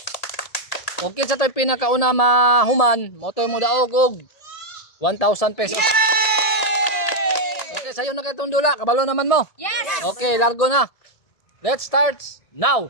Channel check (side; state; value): right; late; 1.8 ms